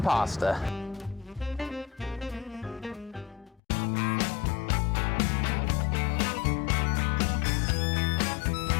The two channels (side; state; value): right; drops out; at 3.6 s